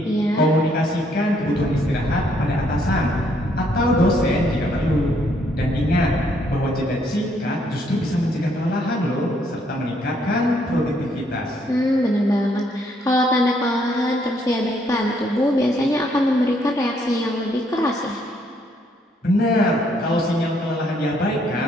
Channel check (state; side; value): normal; both; correlation 0.70